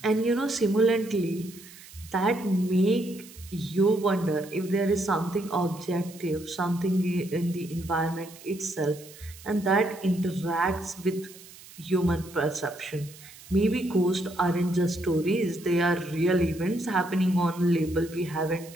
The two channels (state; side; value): noise; right; hiss, 19 dB below the sound